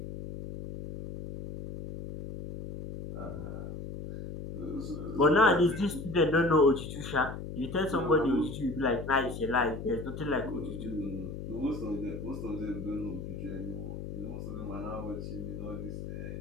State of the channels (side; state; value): left; noise; hum, 8 dB below the sound